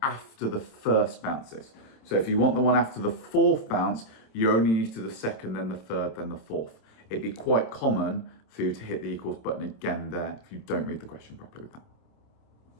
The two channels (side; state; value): right; late; 27 ms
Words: after the 1st bounce is. So if you want the one after the 4th bounce, you only need to do the 2nd, then the 3rd, then the 4th. It'd be quite common for you to hit the equals button again there if you don't read the question properly with that.